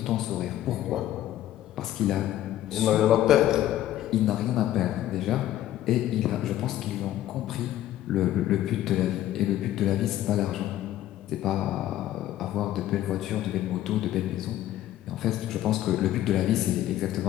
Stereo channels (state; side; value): quieter; right; 13.2 dB